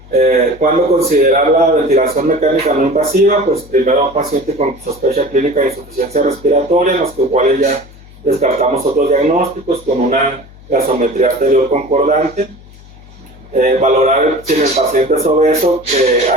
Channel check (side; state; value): left; noise; hum, 22 dB below the sound